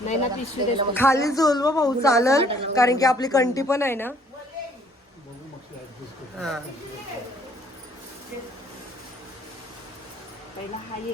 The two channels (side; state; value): both; normal; correlation 0.61